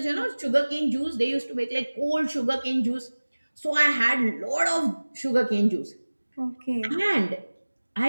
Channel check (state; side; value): inverted; both; correlation -1.00